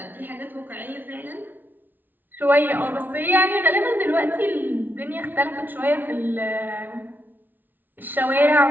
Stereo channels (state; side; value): late; left; 0.089 ms